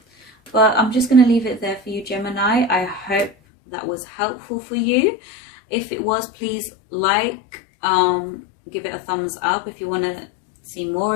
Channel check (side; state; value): right; drops out; at 3.4 s